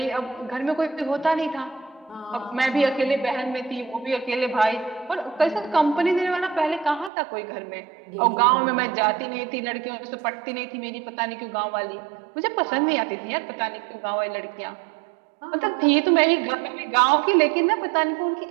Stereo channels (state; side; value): drops out; left; at 7.1 s